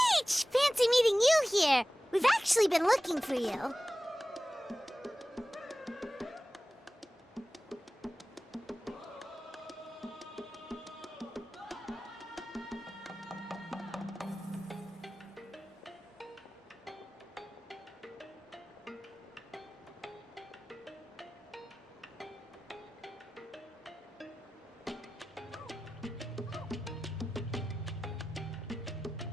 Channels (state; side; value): normal; both; correlation 0.96